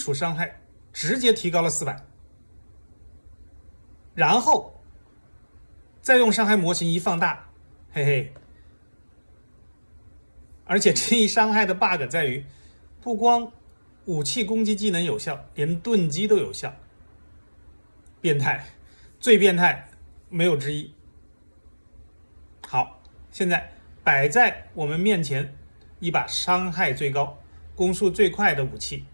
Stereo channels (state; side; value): inverted; both; correlation -1.00